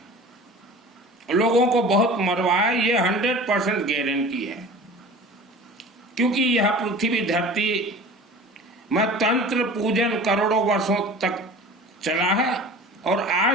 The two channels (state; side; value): normal; both; correlation 0.39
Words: लोगों को बहुत मरवाया। ये 100% गारंटी है। क्योंकि यह पृथ्वी धरती में तंत्र पूजन करोड़ों वर्षों तक चला है और